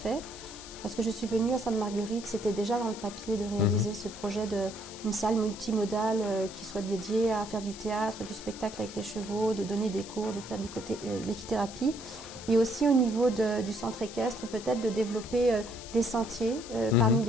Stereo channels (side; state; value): left; noise; hiss, 14 dB below the sound